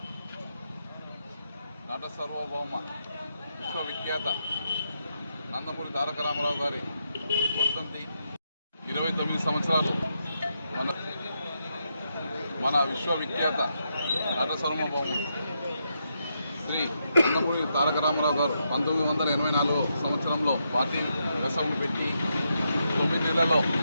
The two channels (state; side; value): inverted; both; correlation -0.82